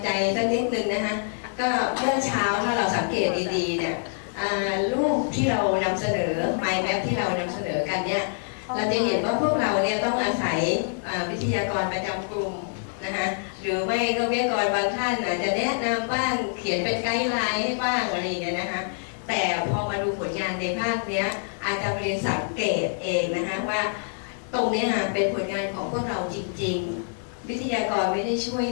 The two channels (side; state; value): right; silent; digital silence